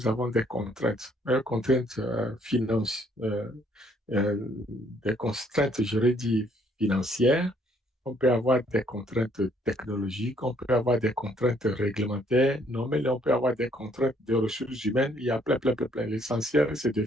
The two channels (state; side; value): normal; both; correlation 0.66